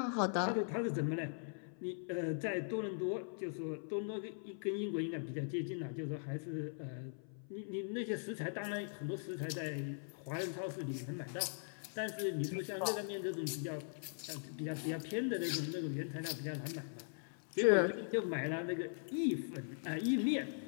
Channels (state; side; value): silent; right; 51 dB below the other